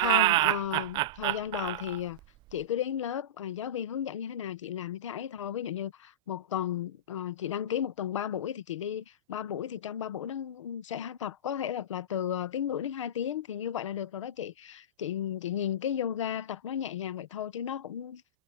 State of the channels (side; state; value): both; normal; correlation -0.19